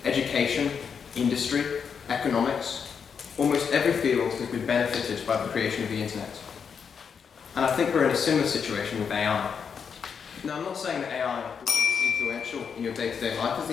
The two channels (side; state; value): right; quieter; 6.6 dB